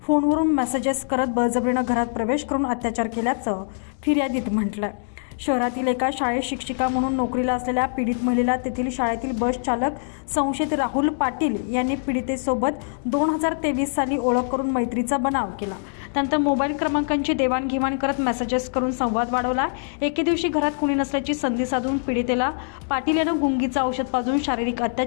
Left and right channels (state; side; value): silent; right; digital silence